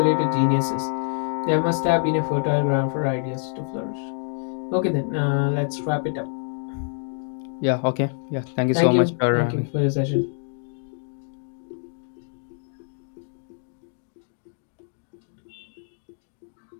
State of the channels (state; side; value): silent; right; digital silence